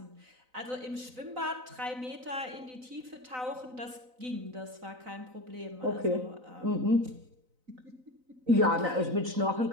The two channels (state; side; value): late; left; 3.9 ms